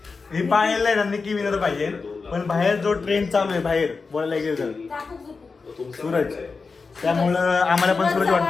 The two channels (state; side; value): quieter; right; 4.5 dB